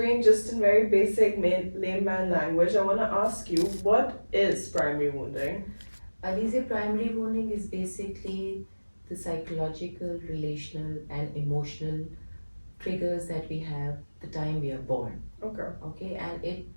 just in very basic layman language, I want to ask you, what is primary wounding? Alicia, primary wounding is basically the psychological, relational, and emotional triggers that we have the time we are born. Okay. Okay, and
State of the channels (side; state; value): both; inverted; correlation -1.00